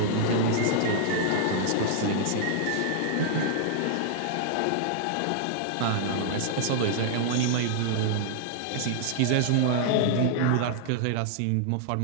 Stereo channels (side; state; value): both; different; correlation -0.01